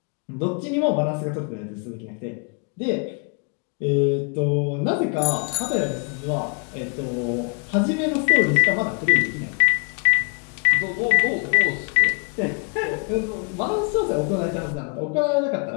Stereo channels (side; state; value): right; quieter; 35.4 dB